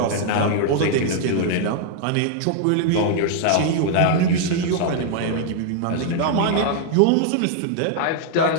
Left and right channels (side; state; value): both; different; correlation 0.00